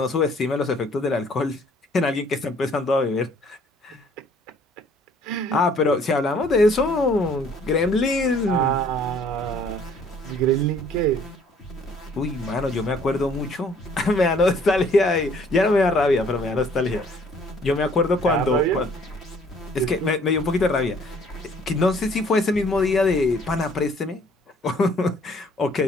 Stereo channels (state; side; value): normal; both; correlation 0.59